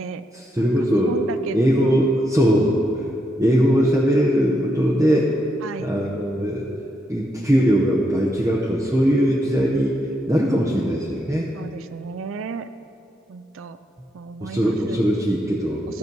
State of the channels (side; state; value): both; normal; correlation 0.80